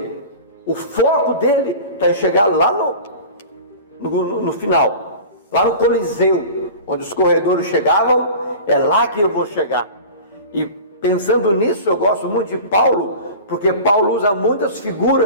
O foco dele está em chegar lá no final, lá no Coliseu, onde os corredores chegavam. É lá que eu vou chegar. E pensando nisso, eu gosto muito de Paulo, porque Paulo usa muitas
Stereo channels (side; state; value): both; inverted; correlation -0.37